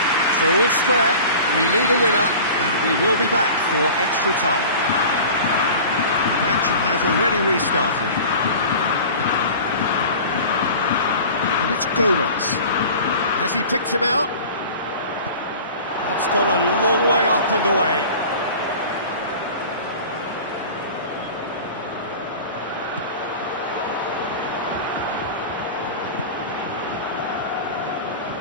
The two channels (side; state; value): both; inverted; correlation -0.39